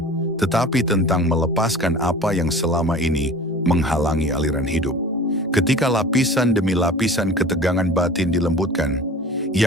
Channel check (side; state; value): both; normal; correlation 0.40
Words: tetapi tentang melepaskan apa yang selama ini menghalangi aliran hidup. Ketika lapisan demi lapisan ketegangan batin dilembutkan,